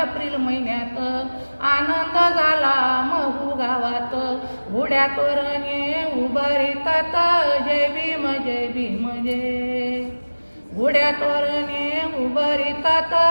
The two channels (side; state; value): both; inverted; correlation -1.00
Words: एप्रिल महिन्यात आनंद झाला महू गावात. घोड्या तोरणे उभारितात जय भीम जय भीम जय. घोड्या तोरणे उभारितात